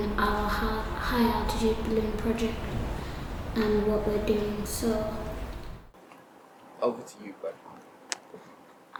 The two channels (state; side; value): identical; both; correlation 1.00